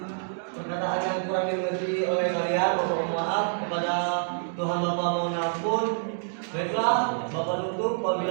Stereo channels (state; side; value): silent; left; digital silence